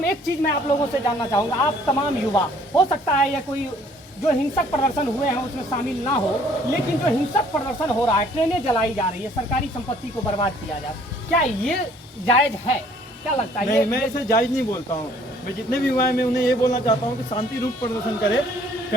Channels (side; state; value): both; normal; correlation 0.59